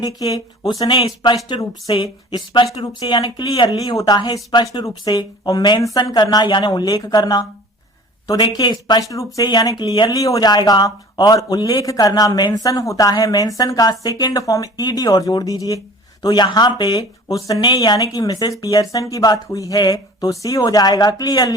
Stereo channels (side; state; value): both; normal; correlation 0.44